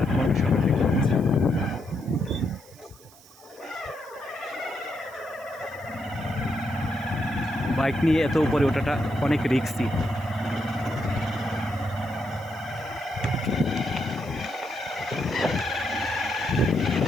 শহর দেখতে পাচ্ছি। বাইক নিয়ে এত উপরে ওঠাটা অনেক রিস্কি।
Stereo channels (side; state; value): right; noise; hiss, 24 dB below the sound